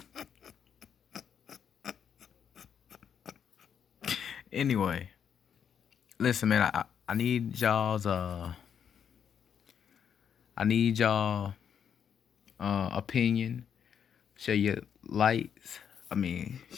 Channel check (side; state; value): right; quieter; 8.0 dB